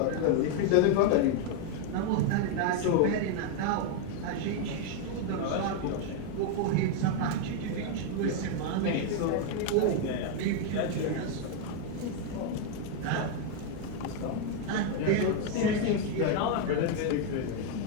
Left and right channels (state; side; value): different; both; correlation 0.00